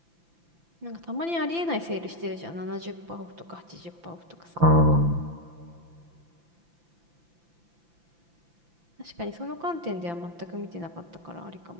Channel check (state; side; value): late; left; 5.9 ms